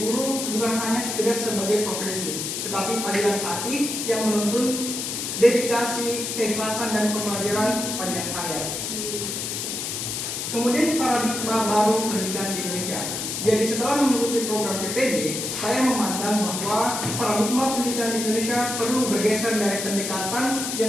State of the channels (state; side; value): noise; left; hiss, 3 dB below the sound